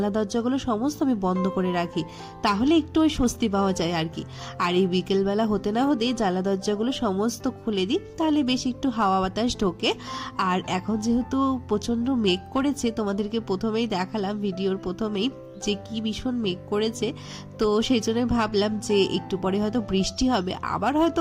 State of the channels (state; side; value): identical; both; correlation 1.00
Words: দরজাগুলো সমস্ত আমি বন্ধ করে রাখি, তাহলে একটু ওই স্বস্তি পাওয়া যায় আর কি। আর এই বিকেলবেলা হতে না হতেই জানলা দরজাগুলো সমস্ত খুলে দিই, তাহলে বেশ একটু হাওয়া বাতাস ঢোকে। আর এখন যেহেতু প্রচন্ড মেঘ করেছে, তোমাদেরকে প্রথমেই দেখালাম ভিডিওর প্রথমেই যে কি ভীষণ মেঘ করেছে, তো সেই জন্য ভাবলাম যে একটু পরে হয়তো বৃষ্টি হবে, আবার হয়তো